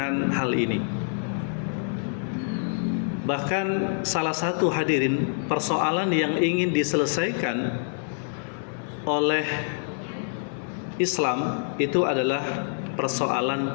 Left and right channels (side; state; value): right; silent; digital silence